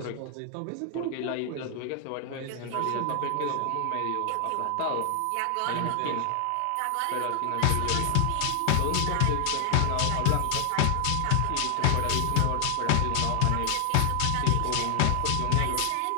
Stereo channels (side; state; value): both; different; correlation 0.00